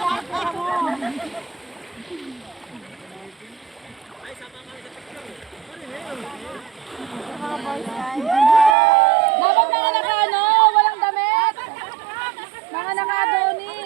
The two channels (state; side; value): drops out; left; at 8.8 s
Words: Bakit mga naka-ano? Walang damit? Mga